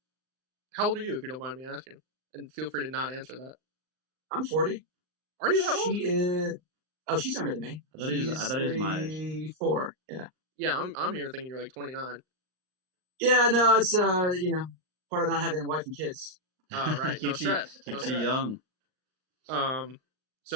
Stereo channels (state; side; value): late; left; 39 ms